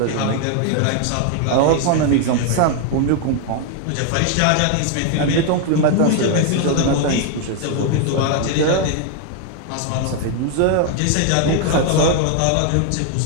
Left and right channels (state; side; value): different; both; correlation 0.00